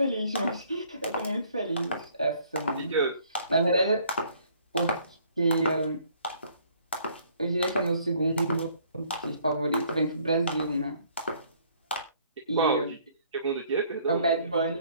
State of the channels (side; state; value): both; inverted; correlation -0.61